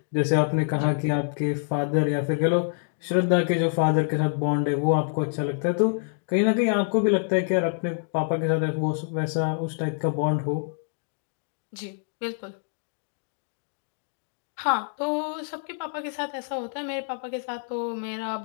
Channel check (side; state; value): right; silent; digital silence